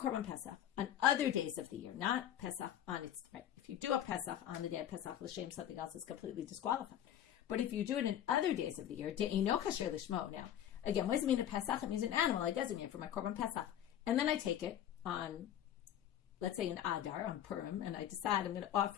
Pesach on other days of the year, not Pesach on its, right? If you do a Pesach on the day of Pesach, l'shem something else is completely disqualified. But if you do it in other days of the year, de'ino kasher lishmo. Now, again, what does it mean a Pesach? It means an animal I designate for my korban Pesach. And then I take it on, let's say an Adar, on Purim, and I decide I'm going to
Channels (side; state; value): right; quieter; 10.9 dB